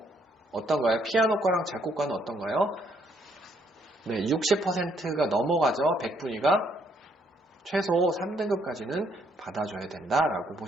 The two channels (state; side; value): normal; both; correlation 0.69